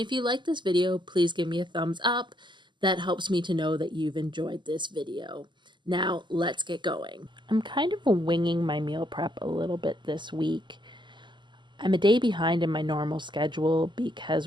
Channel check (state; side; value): late; left; 0.22 ms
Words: you like this video, please give me a thumbs up. That helps me to know that you've enjoyed this video. Now, let's get going. I'm kind of winging my meal prep a little bit this week. I'm a day behind in my normal schedule because